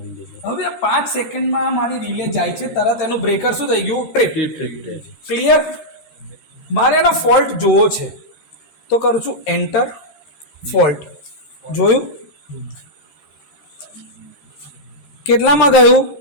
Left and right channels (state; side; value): late; right; 13 ms